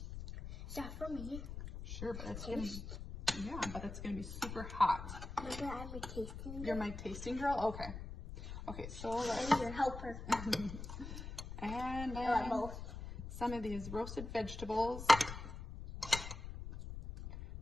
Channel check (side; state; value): left; noise; rumble, 9 dB below the sound